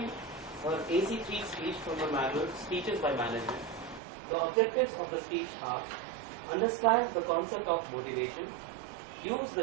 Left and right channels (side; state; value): left; drops out; at 4.0 s